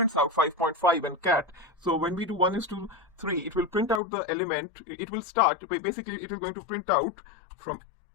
out 5.5 and cat. So when we do 1 is to 3, it will print out the element. It will start, basically it is going to print out from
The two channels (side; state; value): right; drops out; at 4.0 s